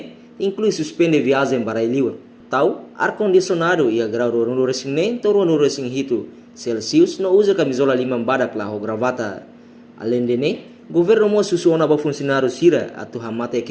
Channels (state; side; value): identical; both; correlation 1.00